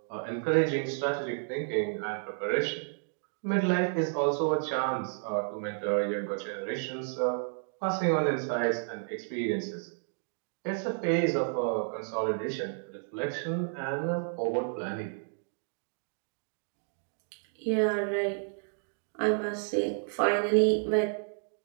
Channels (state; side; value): silent; left; digital silence